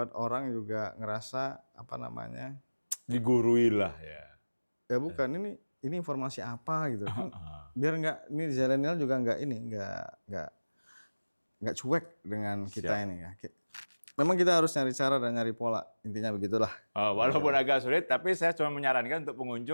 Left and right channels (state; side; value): inverted; both; correlation -1.00